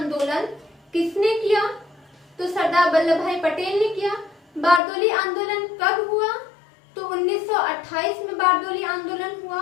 किसने किया, तो सरदार वल्लभ भाई पटेल ने किया। बारदोली आंदोलन कब हुआ, तो 1928 में बारदोली आंदोलन हुआ।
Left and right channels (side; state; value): right; drops out; at 4.8 s